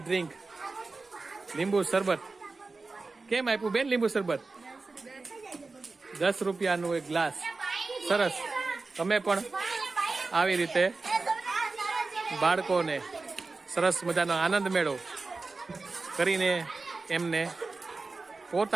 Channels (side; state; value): left; quieter; 3.8 dB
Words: ડ્રિંક, લીંબુ શરબત. કેમ આપ્યું બેન લીંબુ શરબત? 10 રૂપિયાનું એક ગ્લાસ. સરસ. તમે પણ આવી રીતે બાળકોને સરસ મજાનો આનંદ મેળો કરીને એમને